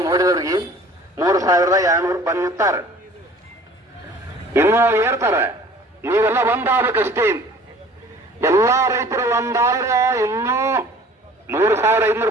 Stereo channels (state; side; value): normal; both; correlation 0.49